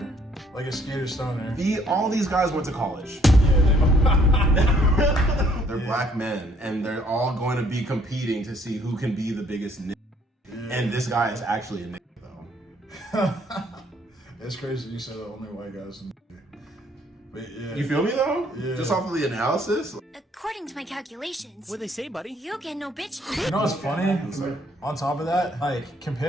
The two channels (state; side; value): normal; both; correlation 0.64